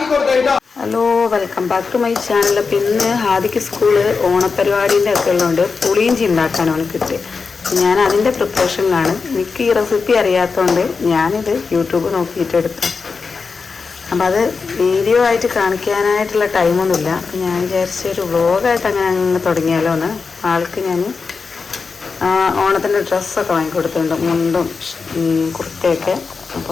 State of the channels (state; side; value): quieter; right; 4.8 dB